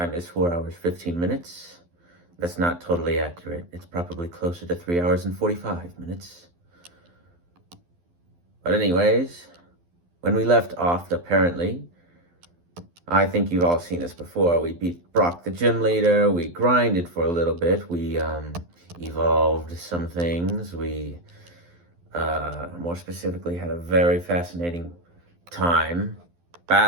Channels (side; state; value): left; late; 12 ms